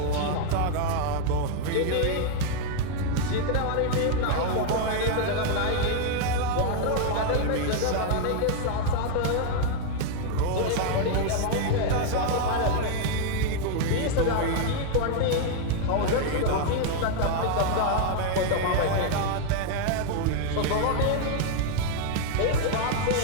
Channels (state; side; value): different; both; correlation 0.00